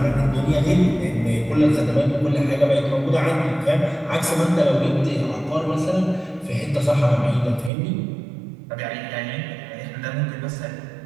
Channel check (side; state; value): left; drops out; at 7.7 s